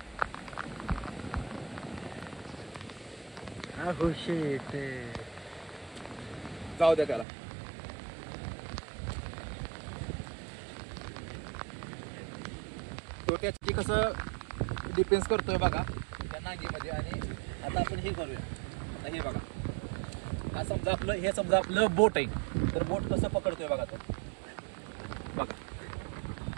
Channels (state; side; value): drops out; left; at 7.2 s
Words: जाऊ द्या त्याला. तो त्याची कसं डिफेन्स करतोय बघा त्या नांगीमध्ये. आणि आता आपण हे करूया. आता हे बघा, हा समजा आपलं बोट आहे, तर बोट कसं पकडतोय बघा तो. बघा